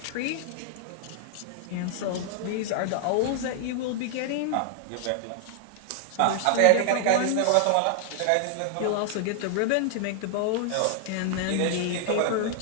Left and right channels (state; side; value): different; both; correlation 0.00